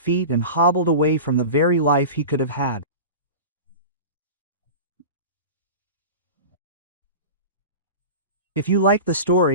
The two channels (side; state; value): both; inverted; correlation -0.31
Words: and hobbled away from the very life he could have had. If you like the